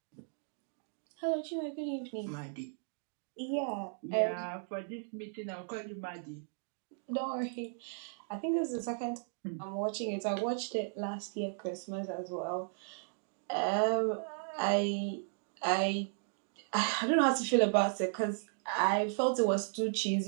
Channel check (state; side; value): silent; left; digital silence